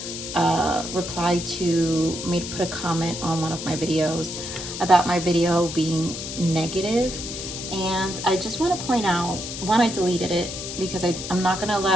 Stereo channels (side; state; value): left; noise; hiss, 7 dB below the sound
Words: reply to put a comment on one of my videos about my video being negative, and I just want to point out, one, I deleted it because I'm not going to